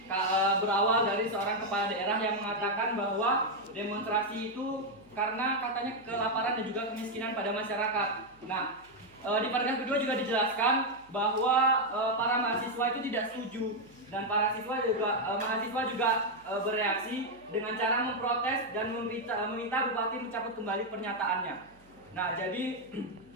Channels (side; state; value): right; noise; hum, 30 dB below the sound